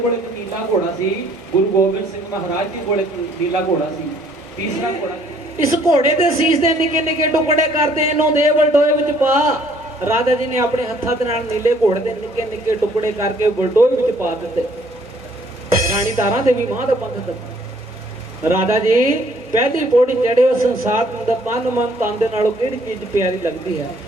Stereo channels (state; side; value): normal; both; correlation 0.62